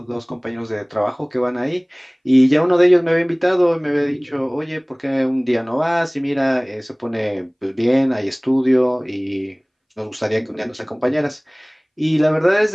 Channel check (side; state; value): both; identical; correlation 1.00